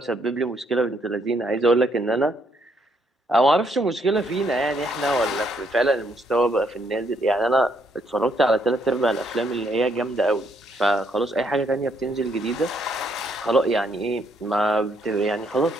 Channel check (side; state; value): both; normal; correlation 0.71